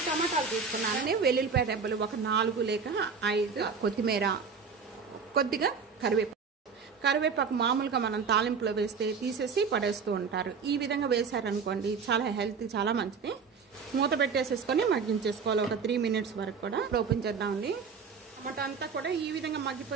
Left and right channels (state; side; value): quieter; left; 5.6 dB